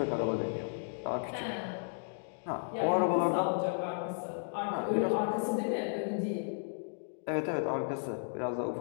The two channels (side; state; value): right; silent; digital silence